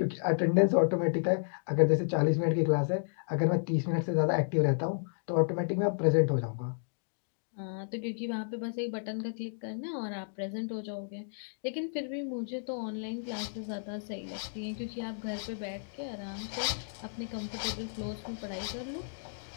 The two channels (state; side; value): silent; right; digital silence